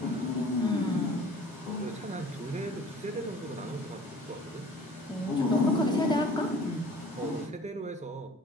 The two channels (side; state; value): both; normal; correlation 0.48